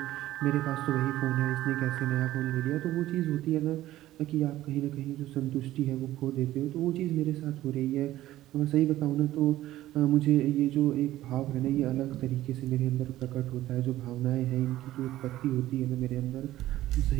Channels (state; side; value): quieter; left; 14.8 dB